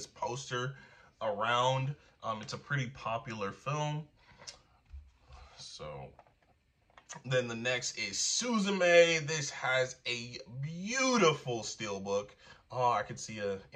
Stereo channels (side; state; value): both; identical; correlation 1.00